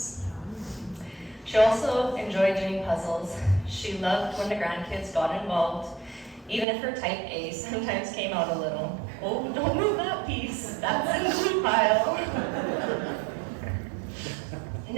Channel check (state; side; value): drops out; left; at 6.7 s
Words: She also enjoyed doing puzzles. She loved when the grandkids got involved, even if her type A sometimes came out a little. Oh, don't move that piece, that's in the glue pile.